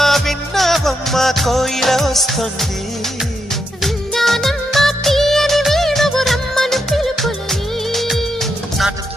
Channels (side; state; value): both; normal; correlation 0.82